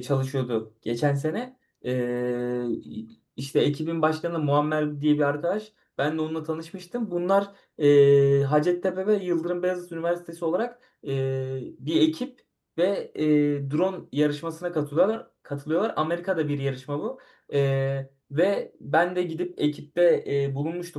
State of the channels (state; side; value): identical; both; correlation 1.00